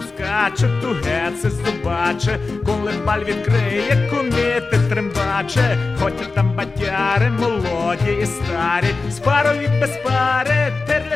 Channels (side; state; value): right; quieter; 3.9 dB